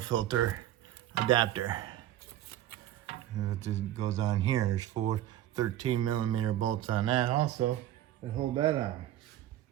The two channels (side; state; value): left; quieter; 12.9 dB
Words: adapter. And it goes on here. There's 4 13mm bolts on that also that hold that on.